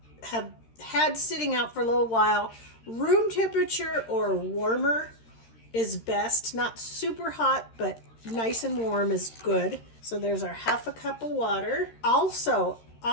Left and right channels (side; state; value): right; late; 13 ms